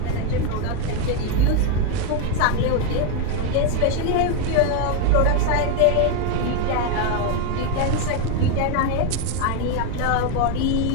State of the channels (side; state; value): both; different; correlation 0.01